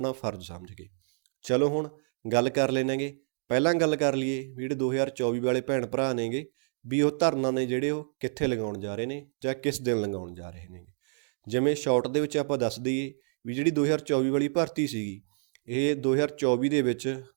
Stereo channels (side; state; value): left; silent; digital silence